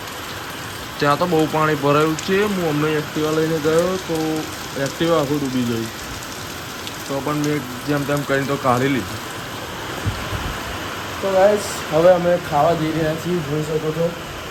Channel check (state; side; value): identical; both; correlation 1.00